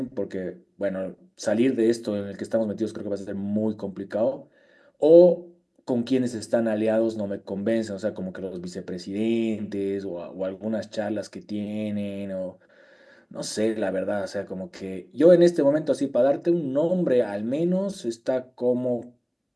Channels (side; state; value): both; identical; correlation 1.00